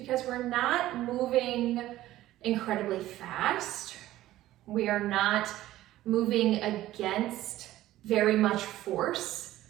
we're not moving incredibly fast. We are not moving against very much force,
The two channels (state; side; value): quieter; left; 15.0 dB